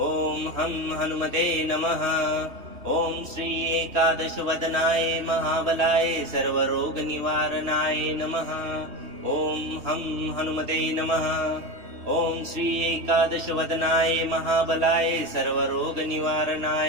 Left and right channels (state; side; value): late; left; 3.2 ms